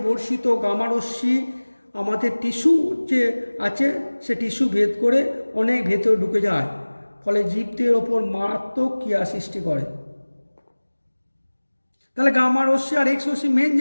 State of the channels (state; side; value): inverted; both; correlation -1.00